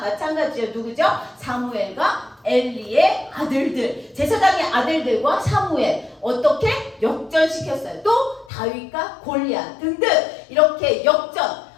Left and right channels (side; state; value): right; drops out; at 8.5 s